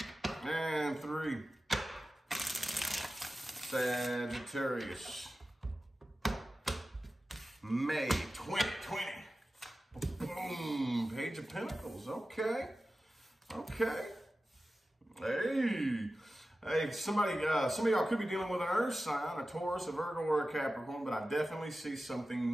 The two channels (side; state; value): both; normal; correlation 0.95